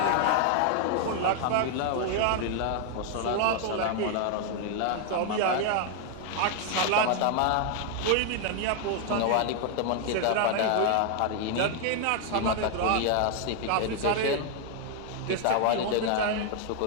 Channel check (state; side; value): different; both; correlation 0.00